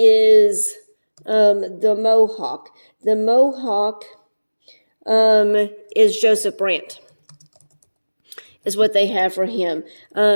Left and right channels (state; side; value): inverted; both; correlation -1.00